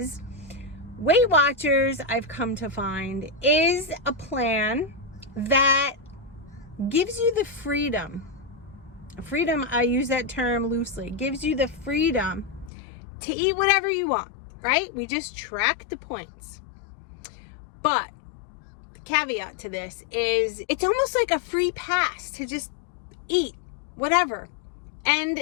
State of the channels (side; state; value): right; drops out; at 12.7 s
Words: Weight Watchers, I've come to find, is a plan that gives you the freedom, I use that term loosely, gives you the freedom to eat whatever you want, right? We just track the points. But the caveat to this is it's almost like a free pass to just eat whatever.